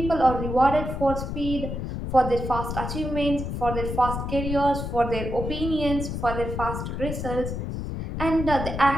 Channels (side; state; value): left; noise; rumble, 4 dB below the sound